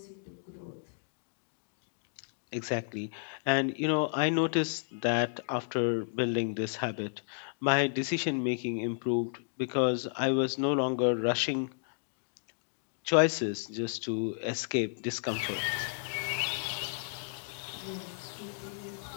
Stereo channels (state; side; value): silent; right; digital silence